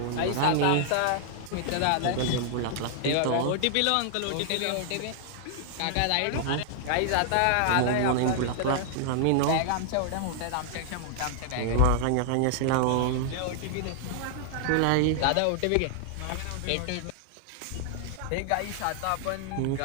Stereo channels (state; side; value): different; both; correlation 0.00